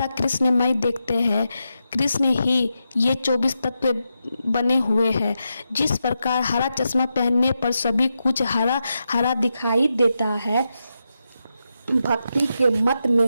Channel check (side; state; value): both; inverted; correlation -0.87